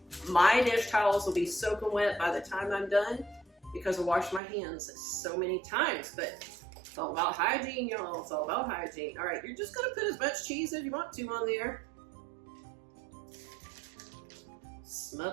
my dish towels will be soaking wet by the time I'm done because I washed my hands so many times. But it's all about hygiene, y'all. It's all about hygiene. All right, you're just gonna put as much cheese as you want to on there.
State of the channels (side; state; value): left; drops out; at 4.4 s